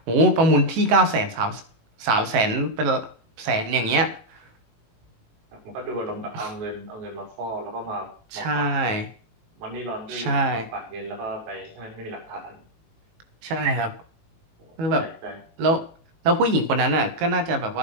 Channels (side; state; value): left; late; 18 ms